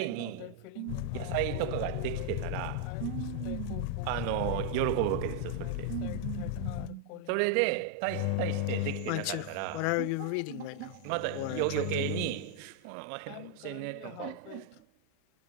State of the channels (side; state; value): both; different; correlation 0.00